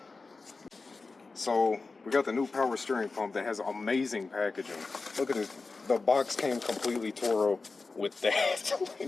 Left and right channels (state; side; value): quieter; right; 4.0 dB